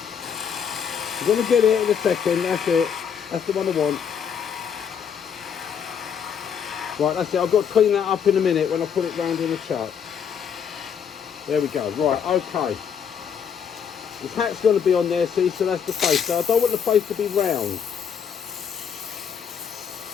You're going to get it in a second, that's it. That's the one I want. Right, that's it. I've got to clean that up in a minute when I put it round in the chuck. There we go. Right, okay. His hat's going to be on there, see, so that's the face. So I don't want the face to be round.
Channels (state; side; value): quieter; right; 7.5 dB